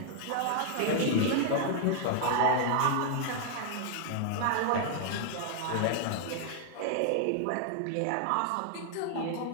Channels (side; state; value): both; different; correlation 0.00